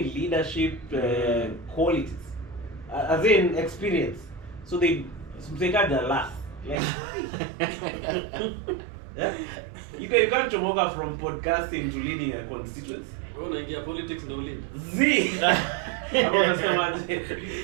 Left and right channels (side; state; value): left; drops out; at 6.8 s